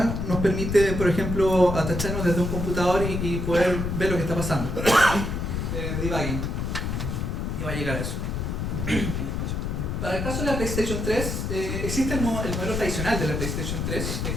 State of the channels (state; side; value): noise; left; rumble, 2 dB below the sound